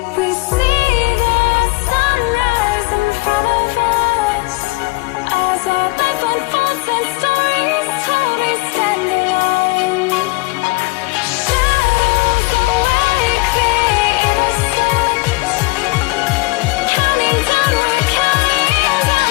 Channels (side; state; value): right; quieter; 23.6 dB